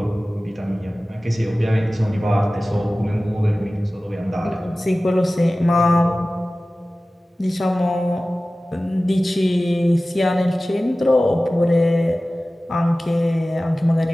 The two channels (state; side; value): normal; both; correlation 0.96